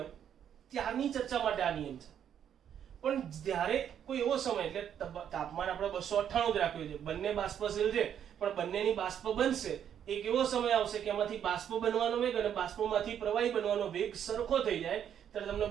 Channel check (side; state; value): left; quieter; 9.2 dB